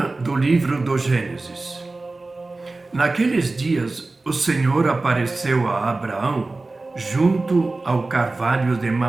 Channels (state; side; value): quieter; left; 3.3 dB